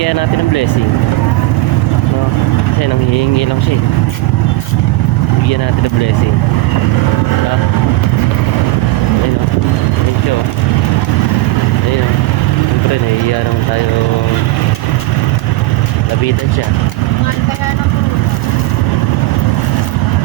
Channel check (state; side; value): quieter; left; 18.8 dB